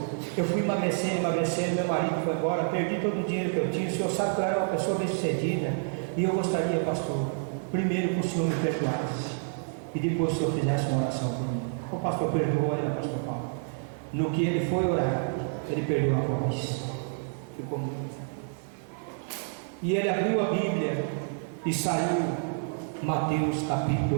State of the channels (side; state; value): left; silent; 57 dB below the other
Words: eu fui emagrecendo, meu marido foi embora, perdi todo o dinheiro que eu tinha. O senhor sabe que eu era uma pessoa bem sucedida, e eu gostaria, pastor, primeiro que o senhor me perdoasse, e depois o senhor fizesse uma oração por mim. O pastor perdoou ela, pastor Paulo. No que ele foi orar, ele perdeu a voz, ficou muito. E ele abriu a Bíblia e saiu Mateus